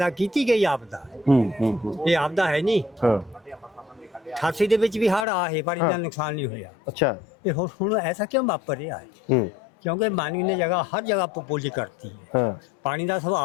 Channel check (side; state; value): right; drops out; at 5.2 s